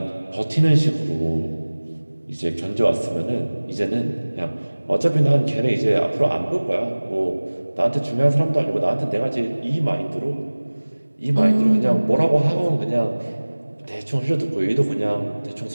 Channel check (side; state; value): both; inverted; correlation -1.00